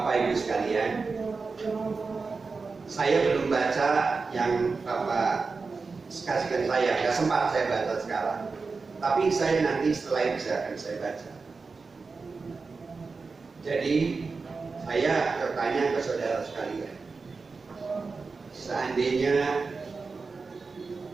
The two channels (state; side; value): quieter; left; 4.4 dB